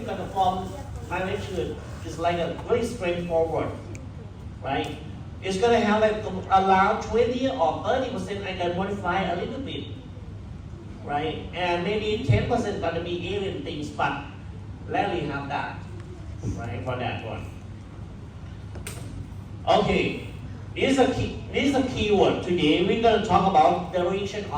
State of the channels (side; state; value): both; identical; correlation 1.00